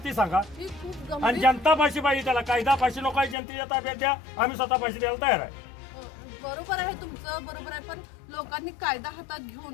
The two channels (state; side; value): drops out; right; at 3.4 s